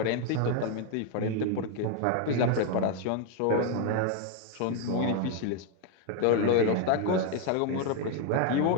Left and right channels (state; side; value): different; both; correlation 0.01